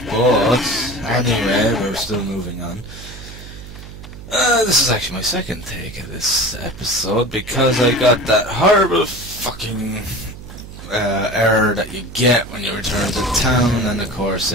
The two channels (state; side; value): noise; right; hum, 14 dB below the sound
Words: but anyway, we're still moving on. This is actually my second take of this episode because I got that horrible fucking error that you get when you return to town, and of course